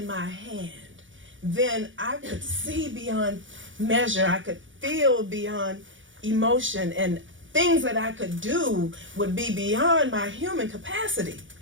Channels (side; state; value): left; late; 0.56 ms